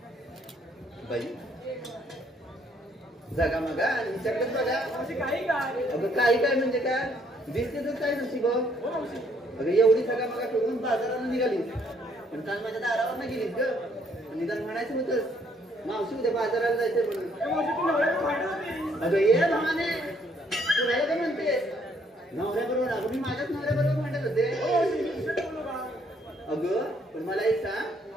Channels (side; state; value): both; normal; correlation 0.68